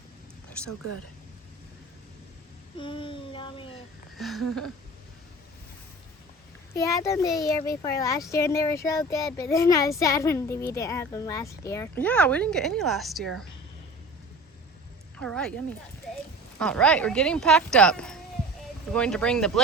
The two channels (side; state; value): both; normal; correlation 0.38